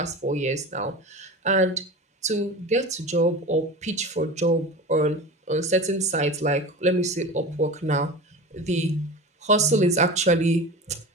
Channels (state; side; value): normal; both; correlation 0.31